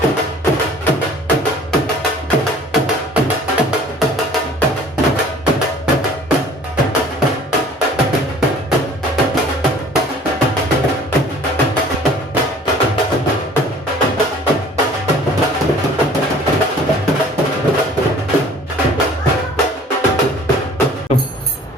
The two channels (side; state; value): both; normal; correlation 0.50